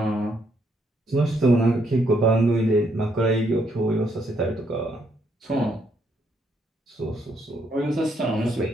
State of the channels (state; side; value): normal; both; correlation 0.73